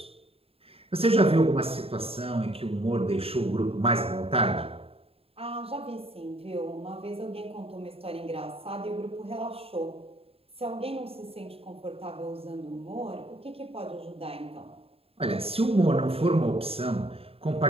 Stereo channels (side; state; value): left; late; 0.28 ms